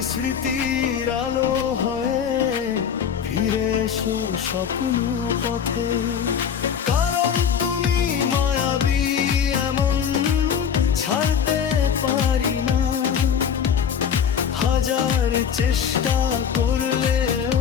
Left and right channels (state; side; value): quieter; right; 7.8 dB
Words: স্মৃতির আলো হয়ে ফিরে এসো স্বপ্ন পথে। কারণ তুমি মায়াবী এমন ছাড়তে পারি না, হাজার চেষ্টা করলেও